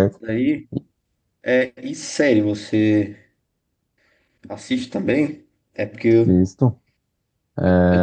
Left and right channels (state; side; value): identical; both; correlation 1.00